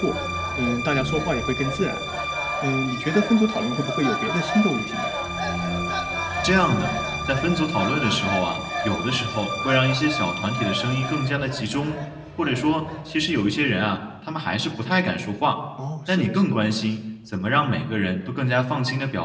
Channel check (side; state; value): both; identical; correlation 1.00